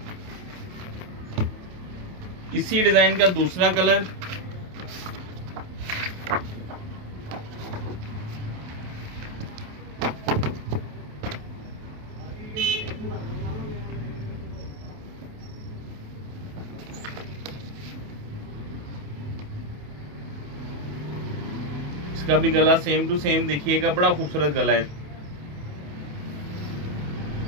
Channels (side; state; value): left; late; 28 ms